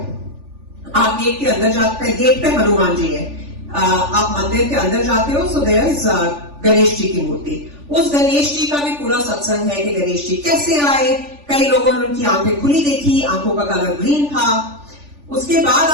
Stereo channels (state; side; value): late; left; 3.4 ms